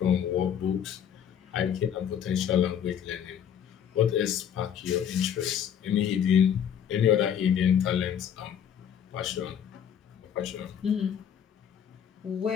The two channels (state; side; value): quieter; right; 8.8 dB